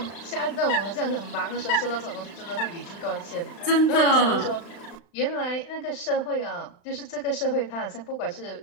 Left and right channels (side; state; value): right; late; 35 ms